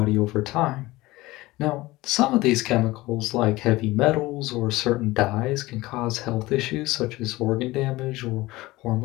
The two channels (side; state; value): right; quieter; 19.5 dB